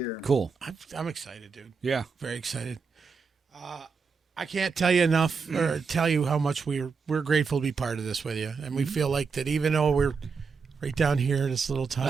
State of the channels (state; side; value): quieter; left; 5.3 dB